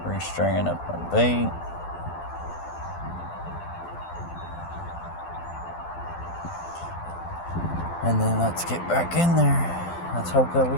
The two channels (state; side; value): late; right; 12 ms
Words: Restringing up my bait. And then let's get back in there. Let's hope that we